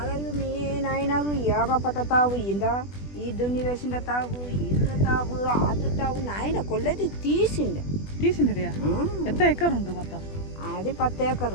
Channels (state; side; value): late; right; 20 ms